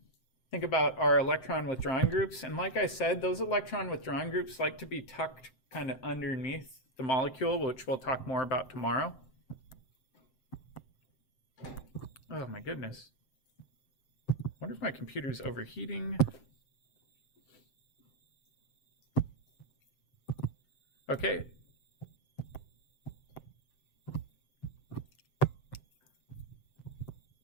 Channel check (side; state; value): right; late; 7.7 ms